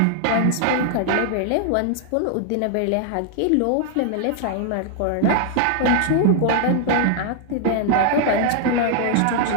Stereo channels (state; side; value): different; both; correlation 0.00